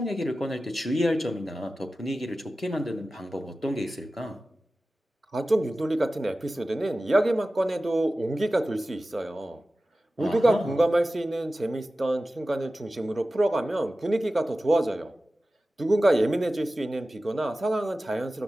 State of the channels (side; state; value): both; normal; correlation 0.95